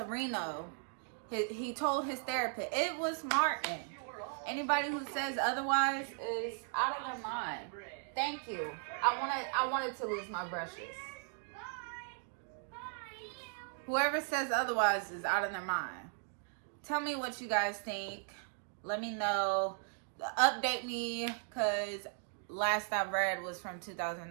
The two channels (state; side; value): silent; left; 53 dB below the other